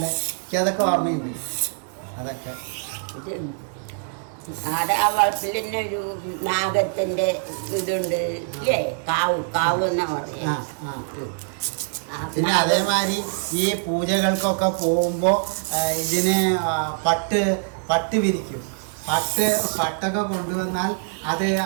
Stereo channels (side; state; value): left; silent; 63 dB below the other